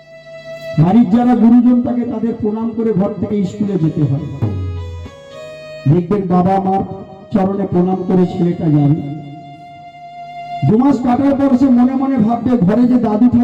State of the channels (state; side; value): identical; both; correlation 1.00